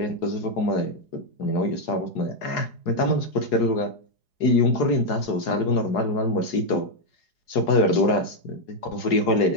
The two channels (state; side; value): late; right; 4.8 ms